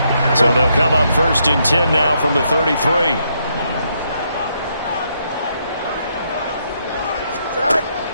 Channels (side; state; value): both; inverted; correlation -0.76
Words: So they'll come up first and 10 now from the 33.